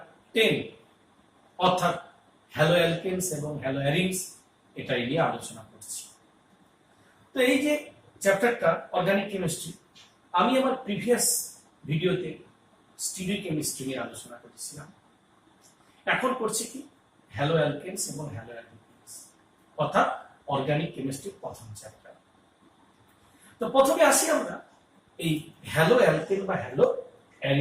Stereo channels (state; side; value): identical; both; correlation 1.00